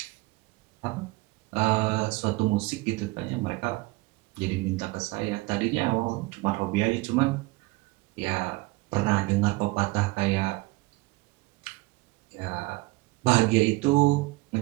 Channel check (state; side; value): quieter; left; 22.5 dB